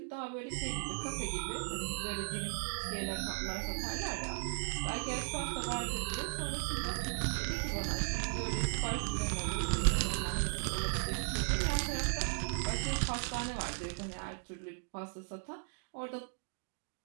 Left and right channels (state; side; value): silent; left; digital silence